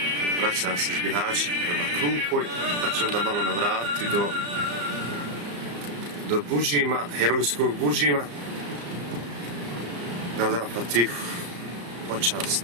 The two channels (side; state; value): left; late; 34 ms